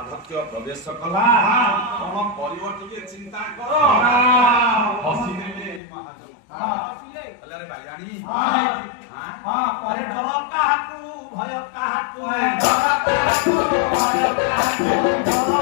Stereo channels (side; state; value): right; drops out; at 5.8 s